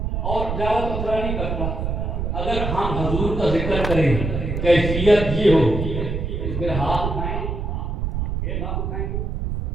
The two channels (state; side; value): noise; right; rumble, 2 dB below the sound